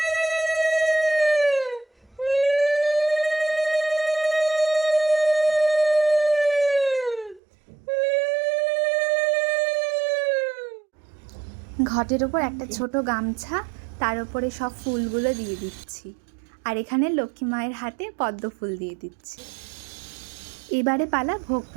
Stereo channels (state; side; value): drops out; left; at 7.4 s